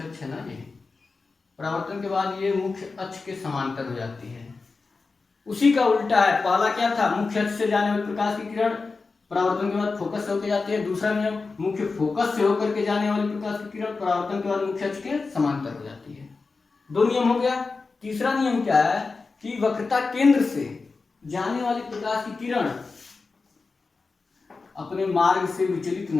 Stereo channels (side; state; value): right; quieter; 4.2 dB